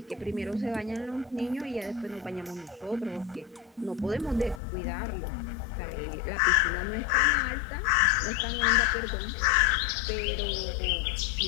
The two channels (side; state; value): right; drops out; at 4.6 s